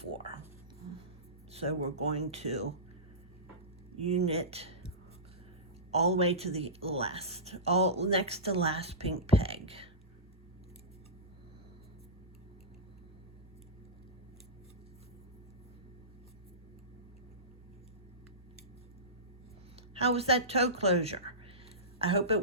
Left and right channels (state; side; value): normal; both; correlation -0.18